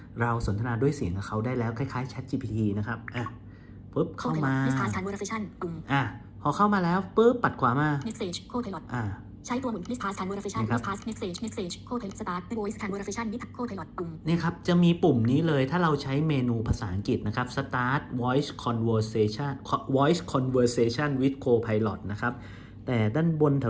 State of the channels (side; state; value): both; identical; correlation 1.00